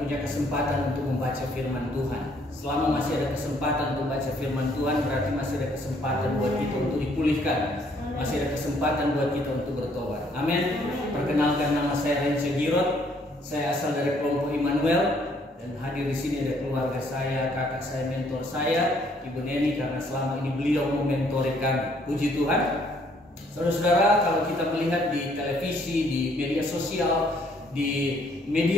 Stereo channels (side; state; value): both; normal; correlation 0.65